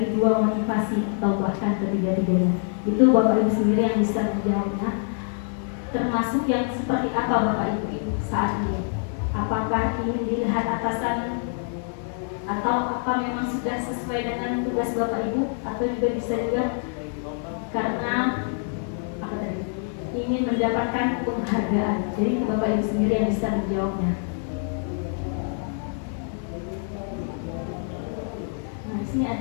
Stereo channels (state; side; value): silent; right; 58 dB below the other